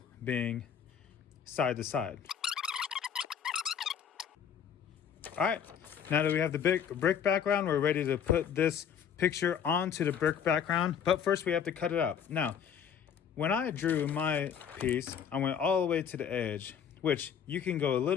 being side to side. All right, now that we have the brick background, we're ready to put this picture onto the brick background, but first we have to cut it out. Now, when I drew my piece, I went all the way to the edge, which you can go a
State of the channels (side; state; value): right; quieter; 8.0 dB